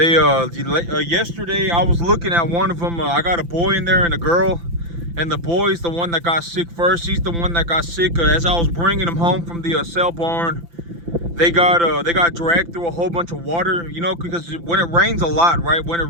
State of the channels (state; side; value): late; left; 5.9 ms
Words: yesterday I was looking at one of them. I got a boy in there and a girl, and the boy's the one that got sick first. He's the one that got sick as I was bringing him home from the sale barn. They got dragged through a whole bunch of water, you know, because when it rains a lot, right? When